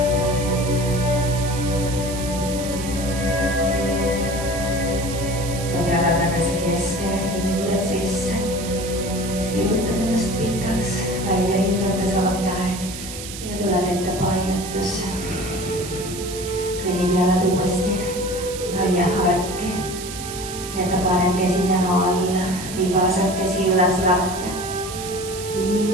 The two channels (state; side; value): noise; right; hiss, 10 dB below the sound